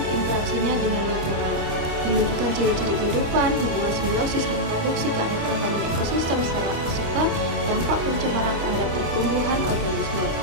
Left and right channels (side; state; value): left; late; 25 ms